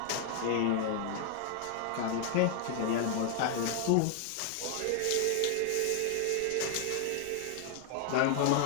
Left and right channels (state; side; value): different; both; correlation 0.00